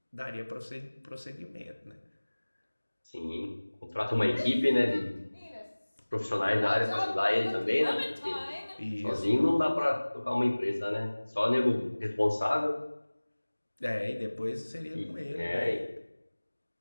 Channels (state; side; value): inverted; both; correlation -1.00